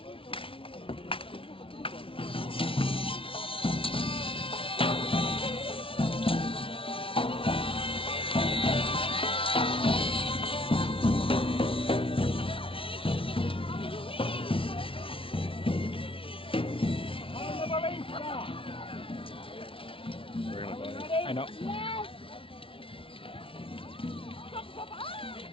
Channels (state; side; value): late; right; 0.26 ms